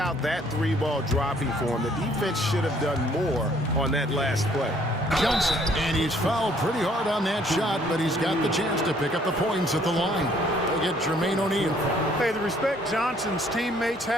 that three ball dropping for him, the defense should have done more on that last play. Johnson, and he's fouled pretty hard on that shot, but he's got the chance to pick up the points at the line. They get Jermaine O'Neal. Hey, the respect Johnson's teammates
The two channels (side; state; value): both; normal; correlation 0.62